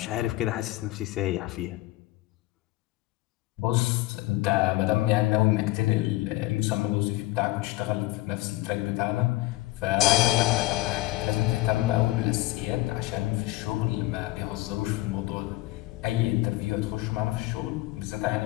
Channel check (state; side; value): quieter; right; 18.5 dB